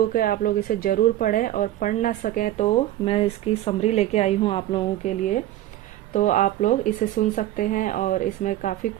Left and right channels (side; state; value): left; quieter; 13.9 dB